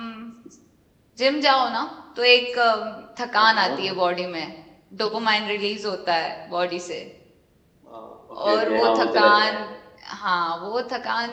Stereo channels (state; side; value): identical; both; correlation 1.00